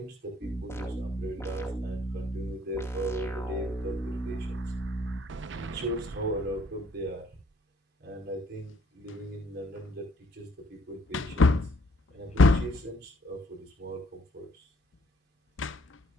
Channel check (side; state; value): both; normal; correlation 0.64